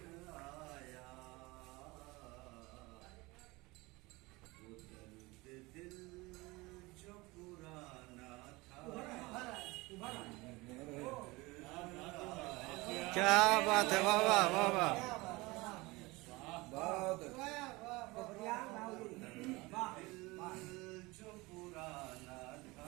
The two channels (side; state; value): left; quieter; 22.8 dB